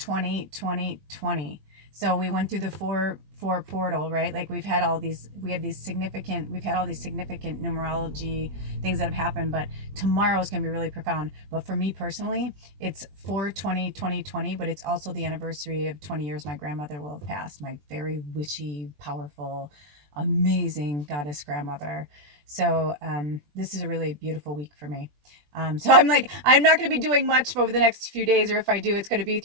So we went through the 4 portal, right? Like we've had all these significant numerology things that have happened, but tomorrow is going to be really profound. But for me personally, it's 4/20/2020, but it's also the anniversary of 20 years my grandmother will have passed, my very witchy, powerful, amazing goddess grandmother. So this is a really beautiful week for me. So I'm like, I'm not going to be doing much over the next few days, or if I do, it's going to be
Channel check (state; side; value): late; left; 20 ms